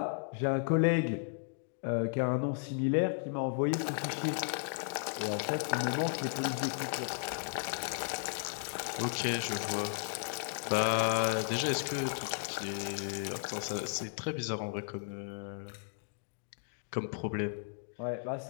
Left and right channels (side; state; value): right; silent; digital silence